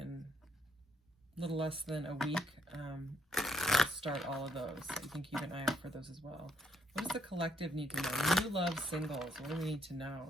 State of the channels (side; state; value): both; normal; correlation 0.73